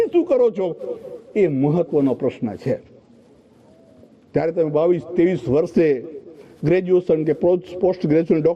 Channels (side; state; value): both; identical; correlation 1.00